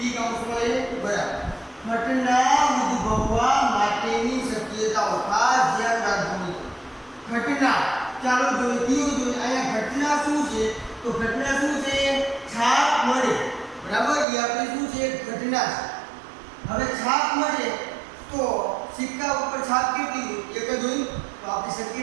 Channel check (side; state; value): left; drops out; at 14.2 s